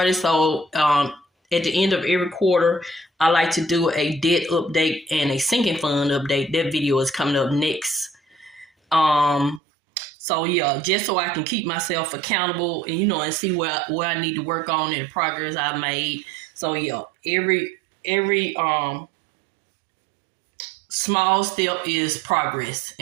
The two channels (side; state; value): left; drops out; at 9.6 s